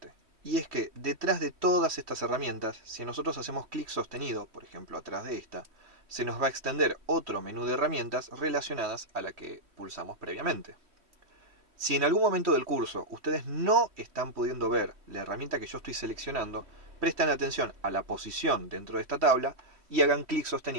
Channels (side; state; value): left; late; 3.1 ms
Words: y es que detrás de todas estas herramientas, si nosotros hacemos clic sostenido, por ejemplo atrás de esta, se nos va a extender otro menú de herramientas relacionadas a la que pulsamos previamente. Si en algún momento del curso ustedes no están pudiendo ver la herramienta que yo estoy seleccionando, presten atención a la posición dentro de esta tabla y hagan clic